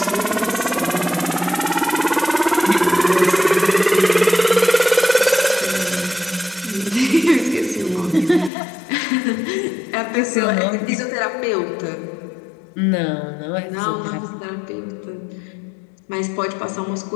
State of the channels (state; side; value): drops out; right; at 8.5 s